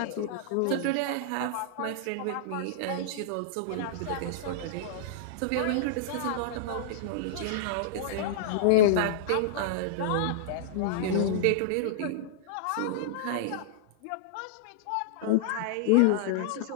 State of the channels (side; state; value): both; different; correlation -0.02